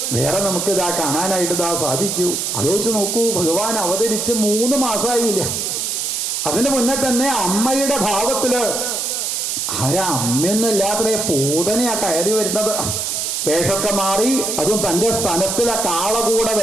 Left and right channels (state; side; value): noise; right; hiss, 1 dB below the sound